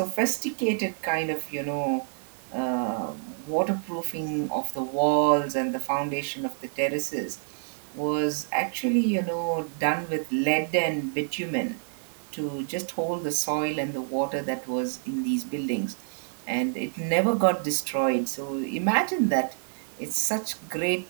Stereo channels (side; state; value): left; silent; digital silence